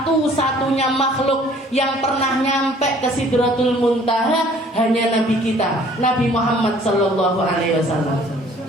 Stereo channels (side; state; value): both; normal; correlation 0.55